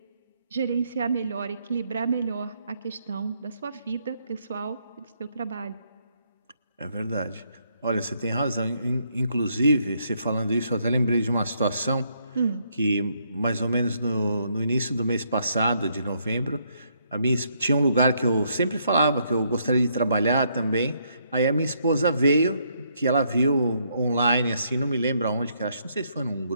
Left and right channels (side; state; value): both; inverted; correlation -0.73